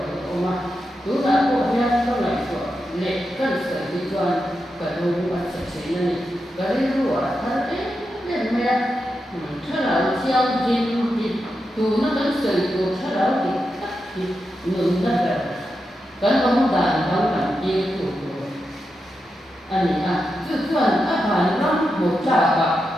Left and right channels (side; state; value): both; normal; correlation 0.87